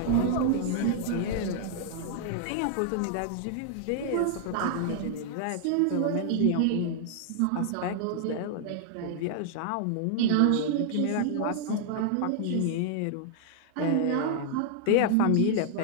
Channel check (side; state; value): both; different; correlation -0.01